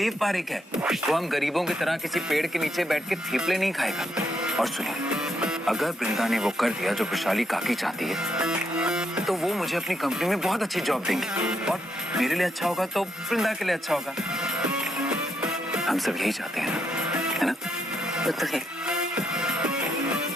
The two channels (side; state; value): both; normal; correlation 0.77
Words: पारेख है, वो हम गरीबों की तरह किसी पेड़ के नीचे बैठ के थेपले नहीं खाएगा। और सुनिए, अगर वृंदा ने वो कर दिया जो वैशाली काकी चाहती है, तो वो मुझे अपनी कंपनी में बहुत अच्छी जॉब देंगी और मेरे लिए अच्छा होगा तो वृंदा के लिए अच्छा होगा। हम सब यही चाहते हैं ना, है ना? तो है।